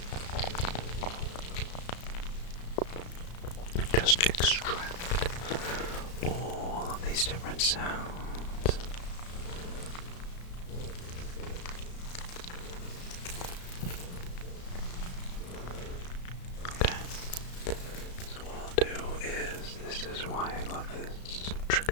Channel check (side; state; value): right; late; 34 ms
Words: just extract all of these different sounds. Okay, so what I'll do is, this is why I love this